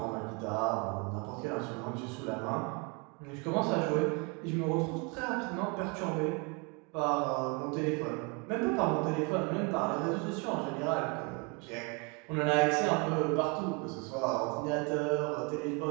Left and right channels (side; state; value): left; quieter; 32.3 dB